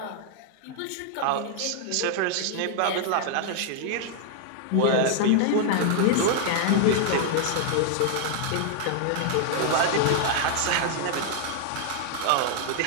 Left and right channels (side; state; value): both; different; correlation 0.00